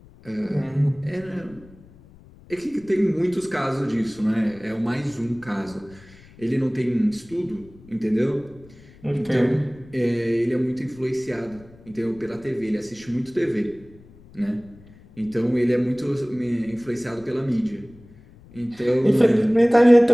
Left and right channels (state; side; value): noise; left; rumble, 24 dB below the sound